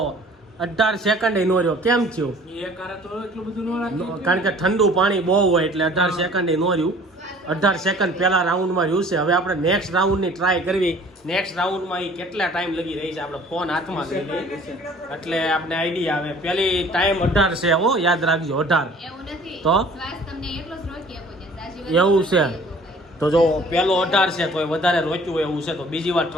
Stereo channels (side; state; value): both; normal; correlation 0.51